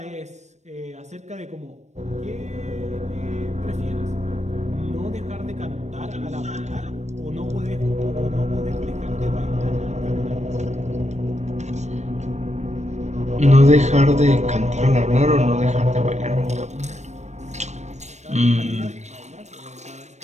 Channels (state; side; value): late; left; 0.33 ms